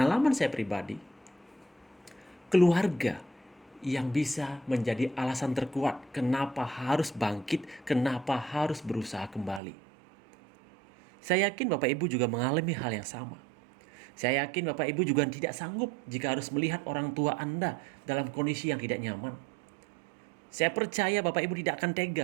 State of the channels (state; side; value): drops out; left; at 9.6 s